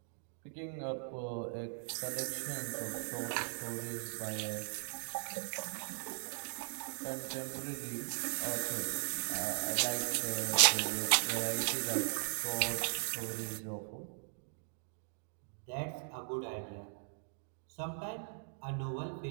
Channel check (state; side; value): silent; left; digital silence